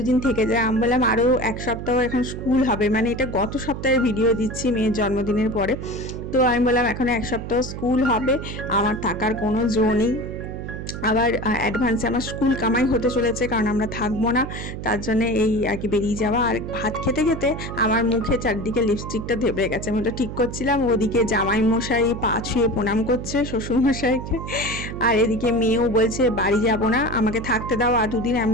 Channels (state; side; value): noise; right; hum, 8 dB below the sound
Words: দিন থেকে যায়। আমি বললাম আরও 1 সপ্তাহ এখন স্কুল হবে, মানে এটা গত সপ্তাহের ভিডিও দিচ্ছি মেয়ের জন্মদিনের পরে। তো আমি বললাম এখন 1 সপ্তাহ স্কুল হবে, আমার থাকার কোনো জো নেই। আবার অ্যাডভান্সে আমার স্কুল কামাই হতে চলেছে, কারণ আমরা থাকবো না, তার জন্য এই আর কি বেরিয়ে যাওয়া। আর ভাত খেতে খেতে আমার মুখে চারদিকে লিপস্টিকটা ধেবে গেছে, আমি ওটা ঠিক করছিলাম। ওদিকে জামাই মশাই পা ছুঁয়ে প্রণাম করছে শ্বশুর মশাইকে, আর এদিকে মেয়েও বলছে বাড়ি যাব না, আমাকে থাকতে দাও আর 2 দিন। আমি